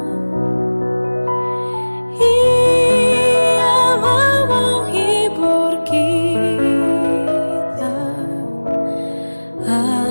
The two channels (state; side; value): inverted; both; correlation -1.00